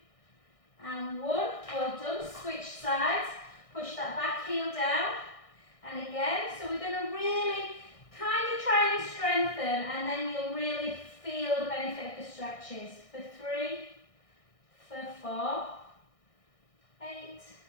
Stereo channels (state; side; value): late; right; 1.6 ms